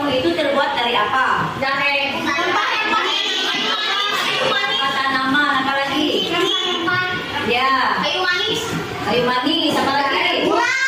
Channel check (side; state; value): both; identical; correlation 1.00